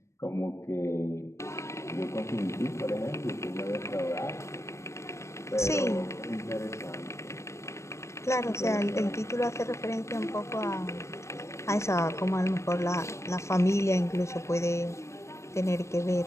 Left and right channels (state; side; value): late; right; 0.14 ms